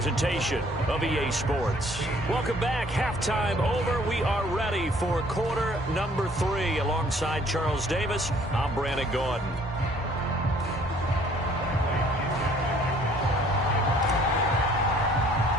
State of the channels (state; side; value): normal; both; correlation 0.59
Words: of EA Sports. Welcome back. Halftime over. We are ready for quarter number 3. Alongside Charles Davis, I'm Brandon Gordon.